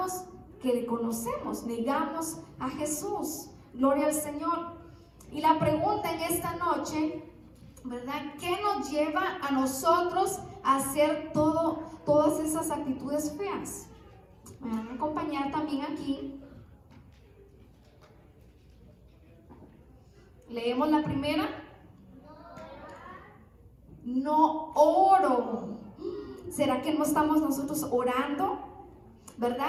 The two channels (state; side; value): identical; both; correlation 1.00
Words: que le conocemos, negamos a Jesús. Gloria al Señor. Y la pregunta en esta noche, ¿verdad? ¿Qué nos lleva a nosotros a hacer todas esas actitudes feas? Me van a acompañar también aquí. Leemos la primera. No oro. ¿Será que no estamos nosotros orando?